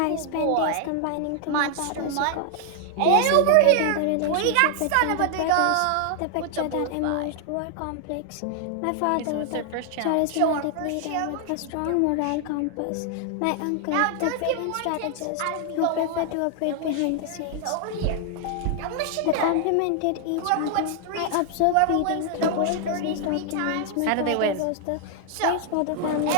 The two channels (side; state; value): both; different; correlation 0.00